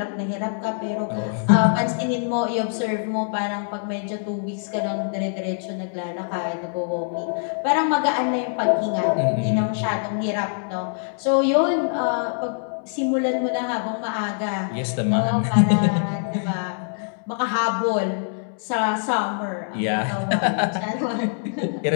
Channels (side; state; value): right; silent; digital silence